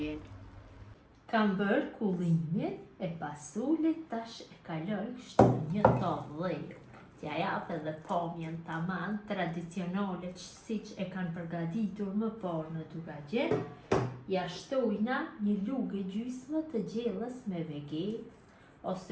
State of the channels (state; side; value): identical; both; correlation 1.00